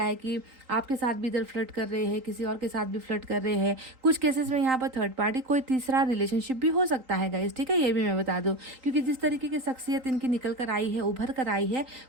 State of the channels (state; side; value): late; left; 3.8 ms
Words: है कि आपके साथ भी इधर फ्लर्ट कर रहे हैं, किसी और के साथ भी फ्लर्ट कर रहे हैं। कुछ केसेस में यहाँ पर थर्ड पार्टी, कोई तीसरा रिलेशनशिप भी हो सकता है गाइस, ठीक है, ये भी मैं बता दूं। क्योंकि जिस तरीके की शख्सियत इनकी निकल कर आई है, उभर कर आई है,